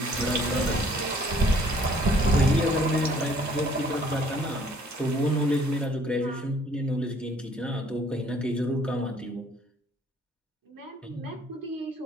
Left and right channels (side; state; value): both; normal; correlation 0.59